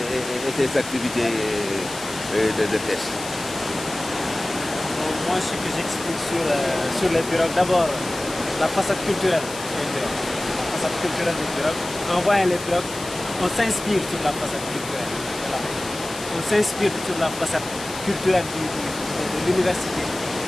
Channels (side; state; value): left; noise; hiss, 12 dB below the sound